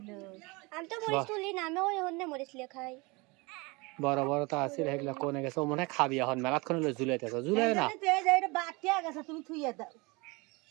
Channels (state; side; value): quieter; left; 26.3 dB